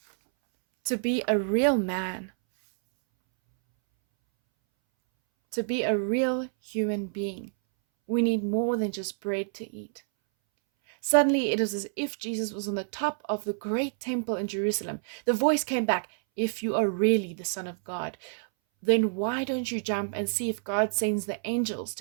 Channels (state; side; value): silent; left; 59 dB below the other